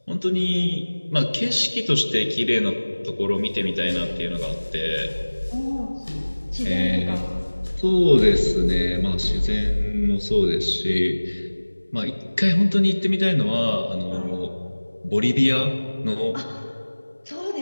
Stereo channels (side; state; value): both; inverted; correlation -1.00